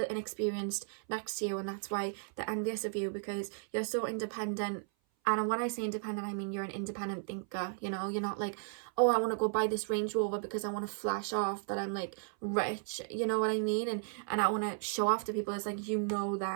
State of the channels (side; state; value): left; silent; 55 dB below the other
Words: inexperienced next to you, and that's why they're envious of you, because you're so independent And when I say independent, I mean you're an independent thinker, you know? You're not like, oh, I want to go buy this Range Rover because I want to flash off that I'm like rich, you know what I mean? And I want to show off to people. It's like, you know